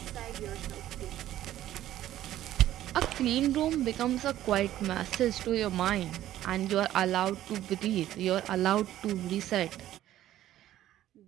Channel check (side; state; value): left; quieter; 13.2 dB